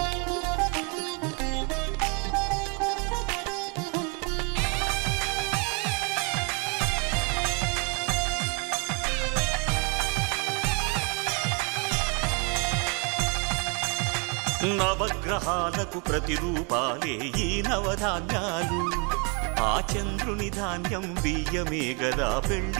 నవగ్రహాలకు ప్రతిరూపాలే ఈ నవధాన్యాలు, ఆ చంద్రుని ధాన్యం బియ్యమే గదా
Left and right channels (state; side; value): quieter; left; 34.1 dB